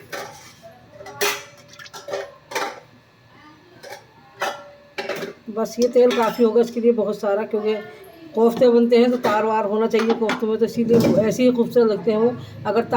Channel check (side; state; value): both; identical; correlation 1.00